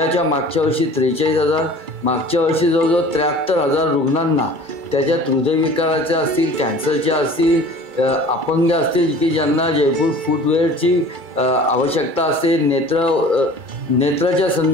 वर्षी 43,000, मागच्या वर्षी जवळजवळ 73,000 रुग्णांना त्याच्यात हृदयविकाराचे असतील, कॅन्सरचे असतील, अपंग असतील की ज्यांना जयपूर फुटवेअरची आवश्यकता असते, नेत्राच्या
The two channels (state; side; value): late; left; 2.3 ms